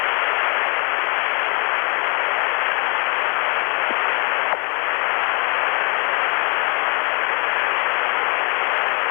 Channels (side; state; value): right; quieter; 36.9 dB